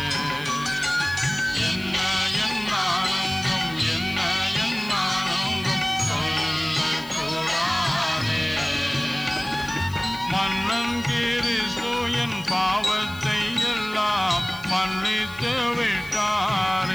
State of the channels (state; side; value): noise; left; hiss, 20 dB below the sound